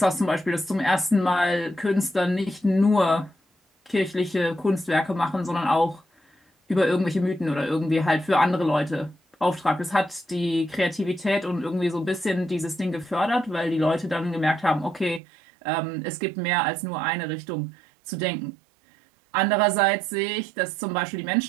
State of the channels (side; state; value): left; drops out; at 15.2 s